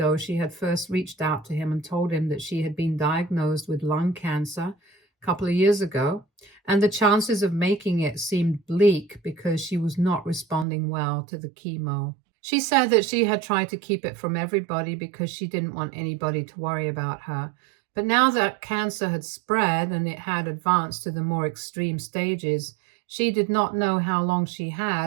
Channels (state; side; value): drops out; left; at 10.7 s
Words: she had first reached out to him and told him that she had been diagnosed with lung cancer a couple of years ago, and the chances of making it seemed bleak because she was not responding well to the chemo. She said that she had tried to keep it from everybody because she didn't want anybody to worry about her. But now that cancer had spread and it had advanced to the more extreme stages, she did not know how long she